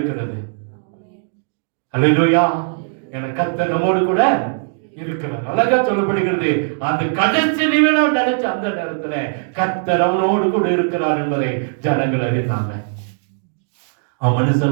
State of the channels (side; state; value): left; silent; digital silence